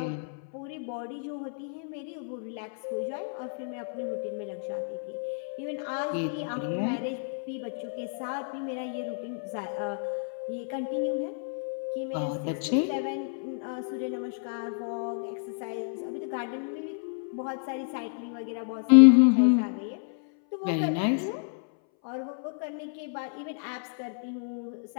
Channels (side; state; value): right; silent; 58 dB below the other